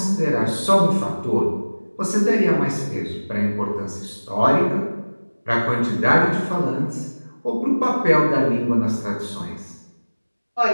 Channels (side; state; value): both; inverted; correlation -1.00